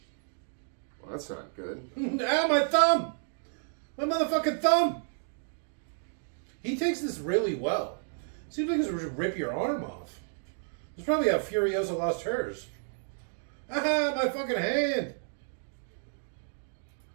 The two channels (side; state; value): left; silent; digital silence